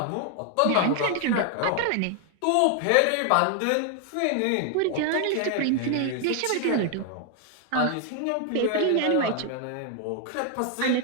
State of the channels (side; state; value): both; different; correlation 0.00